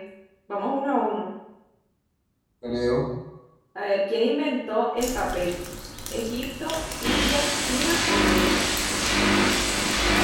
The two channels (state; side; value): identical; both; correlation 1.00